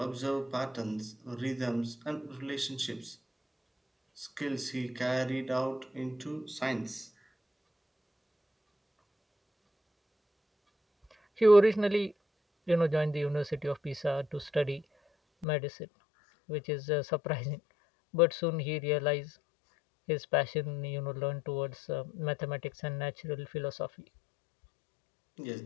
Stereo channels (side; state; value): right; drops out; at 15.5 s